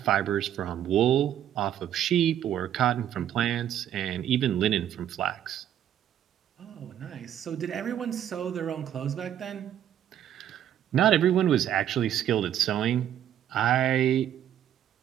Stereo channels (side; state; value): left; quieter; 10.6 dB